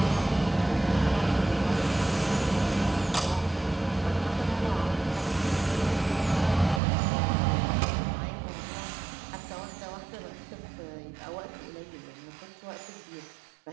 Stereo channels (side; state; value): left; drops out; at 6.8 s